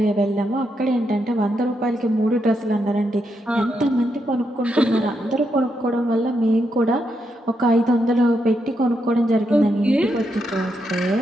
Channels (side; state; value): both; normal; correlation 0.81